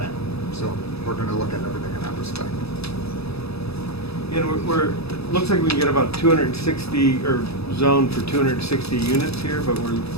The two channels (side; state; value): right; late; 0.78 ms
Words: So we're going to look at everything in that respect. And it looks like we can get about 260, or zone for 260 units here, but we're